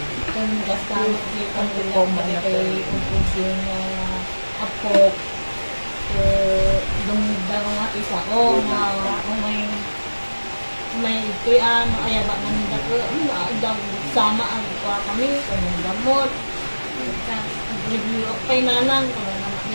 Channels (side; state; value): both; inverted; correlation -1.00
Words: Kung gastamot di kang lumaman kay yung apo. Dumudang nga isa ko may kuyan, ayaba ng dako, sama ang kuha kami, kung gamot. Review of pay nanang, kung naman